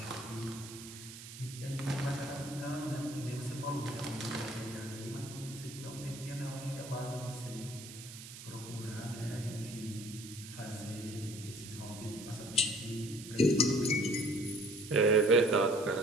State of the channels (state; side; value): noise; right; hiss, 13 dB below the sound